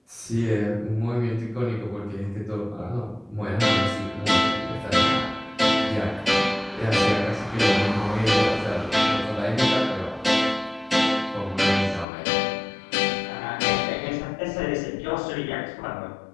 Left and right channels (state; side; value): drops out; right; at 12.1 s